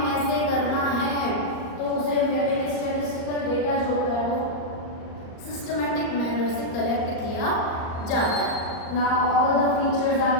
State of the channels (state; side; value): late; right; 38 ms